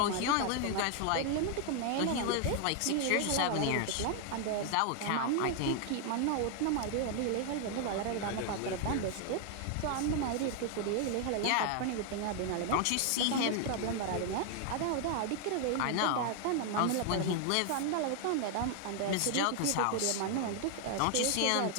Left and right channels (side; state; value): both; different; correlation 0.00